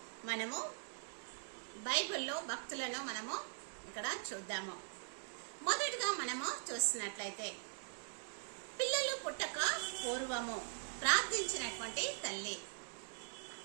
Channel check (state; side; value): silent; left; digital silence